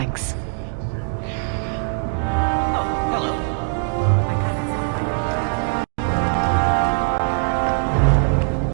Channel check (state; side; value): silent; left; digital silence